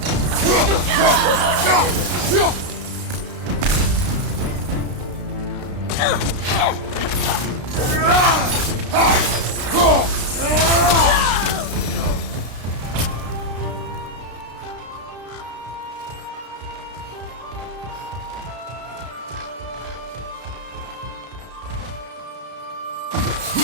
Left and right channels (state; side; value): late; left; 33 ms